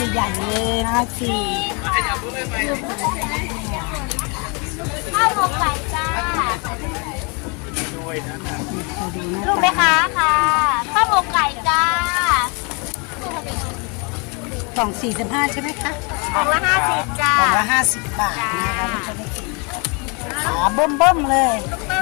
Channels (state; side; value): quieter; right; 32.4 dB